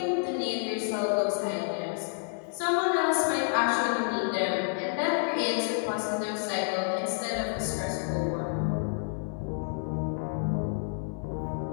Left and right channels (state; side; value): silent; right; digital silence